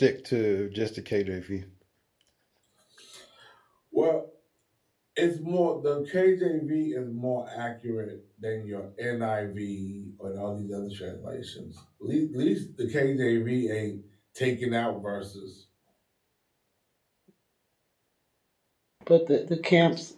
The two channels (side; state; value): both; identical; correlation 1.00